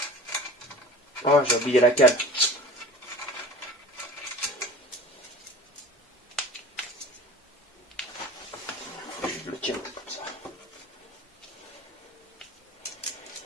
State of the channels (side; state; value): both; normal; correlation 0.40